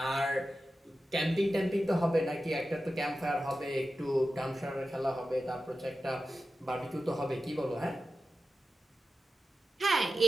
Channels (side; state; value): both; normal; correlation 0.93